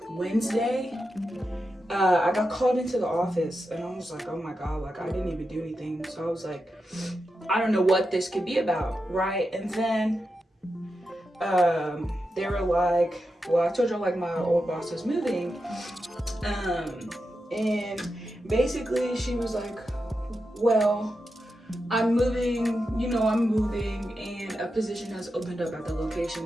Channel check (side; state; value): both; normal; correlation 0.89